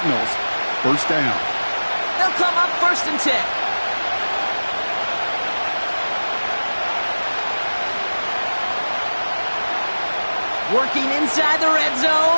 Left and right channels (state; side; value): inverted; both; correlation -1.00